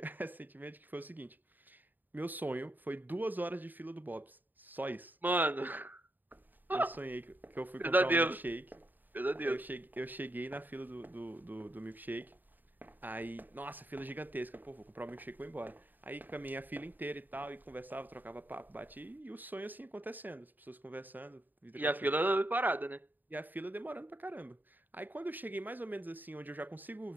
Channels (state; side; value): late; left; 0.089 ms